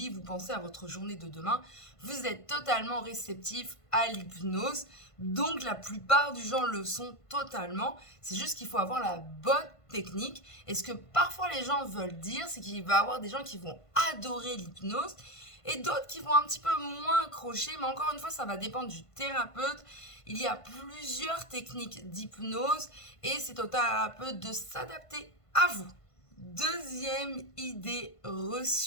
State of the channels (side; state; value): right; late; 1.5 ms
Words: vous pensez à votre journée de demain, vous êtes totalement réceptif à l'hypnose. Donc la plupart du gens le sont totalement. C'est juste qu'il faut avoir la bonne technique. Et ce que parfois les gens veulent dire, c'est qu'il va y avoir des gens qui vont adorer l'hypnose et d'autres qui vont un petit peu moins accrocher. Mais encore une fois, ça va dépendre du thérapeute. Il y a plusieurs techniques d'hypnose et c'est au thérapeute de s'adapter à vous. Deuxième idée